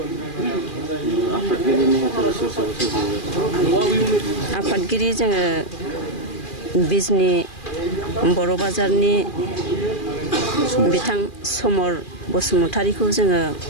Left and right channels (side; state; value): right; late; 2.4 ms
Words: आफादगिरि जोङो बिजनि बर' बाजारनि बिथां समर बसुमतारीखौ जोङो